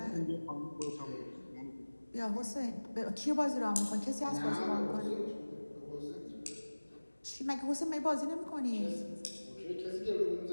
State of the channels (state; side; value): inverted; both; correlation -1.00